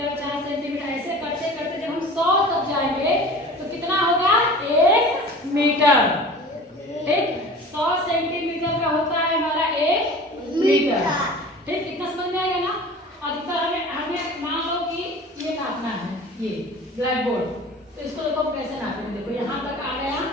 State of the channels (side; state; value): both; normal; correlation 0.40